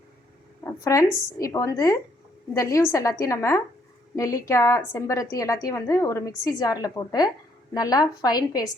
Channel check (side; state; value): both; normal; correlation 0.69